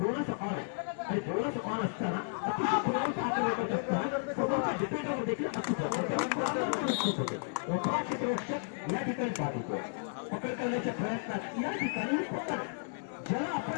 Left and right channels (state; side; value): silent; right; digital silence